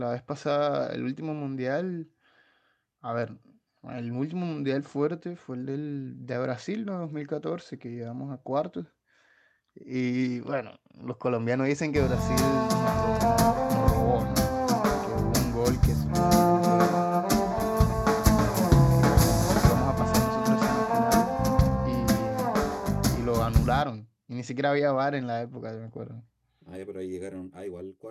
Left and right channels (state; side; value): identical; both; correlation 1.00